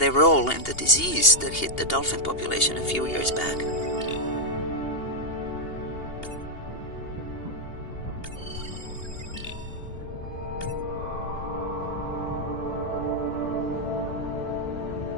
role in the disease that hit the dolphin population a few years back.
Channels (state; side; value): late; right; 2.8 ms